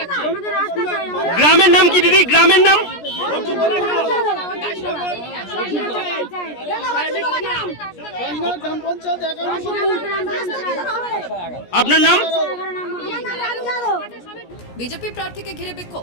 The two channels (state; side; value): late; right; 17 ms